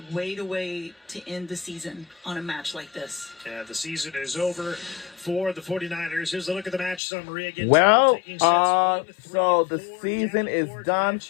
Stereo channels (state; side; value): drops out; right; at 7.0 s